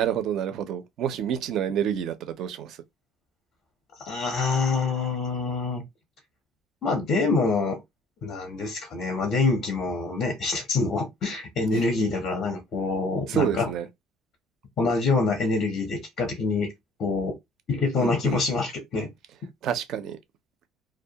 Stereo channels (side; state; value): both; normal; correlation 0.52